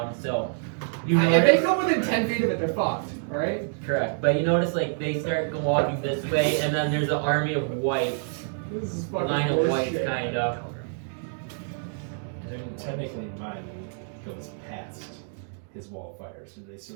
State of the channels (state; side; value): silent; left; digital silence